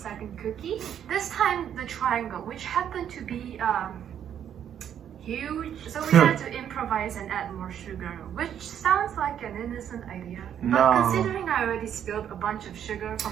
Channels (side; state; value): left; quieter; 9.4 dB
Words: cookie. This time, the triangle, which happened to be huge. So we had to improvise and add more sugar, which sounds like an innocent idea. But No. considering I already spilled a bunch of sugar